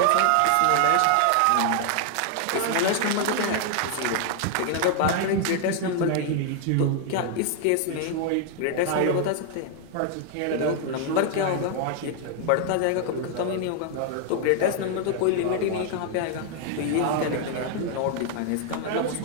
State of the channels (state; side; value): different; both; correlation 0.00